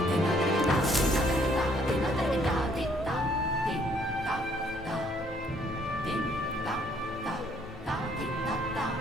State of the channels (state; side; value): normal; both; correlation 0.65